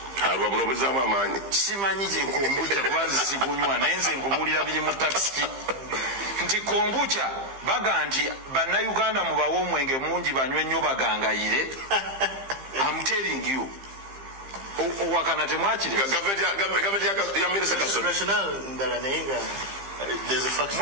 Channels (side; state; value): left; late; 15 ms